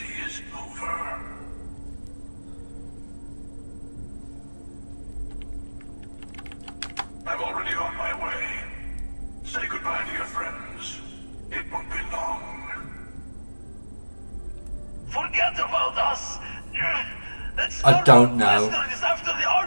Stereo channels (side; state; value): both; inverted; correlation -1.00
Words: is over. I'm already on my way. Say goodbye to your friends. It won't be long. Forget about us. That I don't know. Starboard is after the